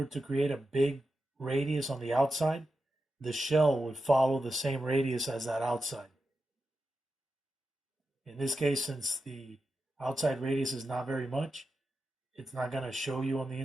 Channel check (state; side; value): normal; both; correlation 0.90